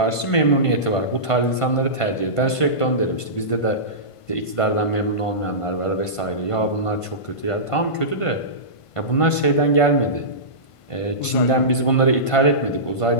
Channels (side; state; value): right; late; 1.5 ms